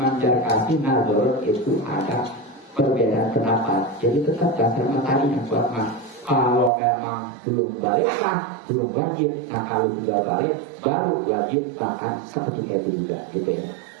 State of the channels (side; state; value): left; drops out; at 6.7 s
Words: Jarkasi Nazor itu ada perbedaan pendapat. Jadi tetap dasar materi yang kuat mah. Kalau memang belum balik mah belum wajib. Nah kalau sudah balik baru wajib bahkan seperti itu juga gitu ya.